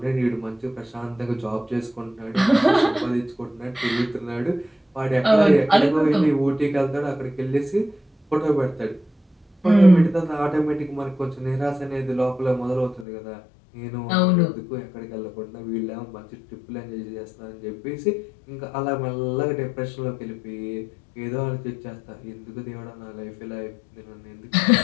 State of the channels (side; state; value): right; drops out; at 13.1 s